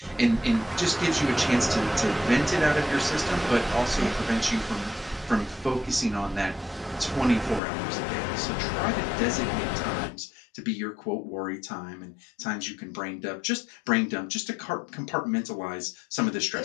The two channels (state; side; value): drops out; right; at 7.6 s